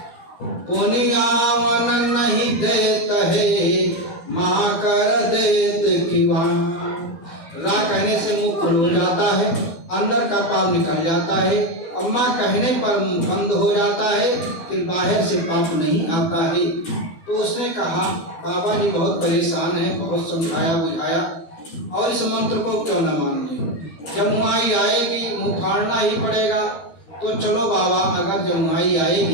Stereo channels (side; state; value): right; late; 12 ms